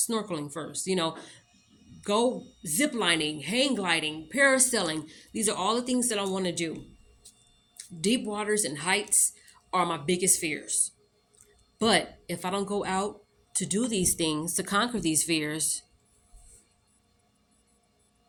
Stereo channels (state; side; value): identical; both; correlation 1.00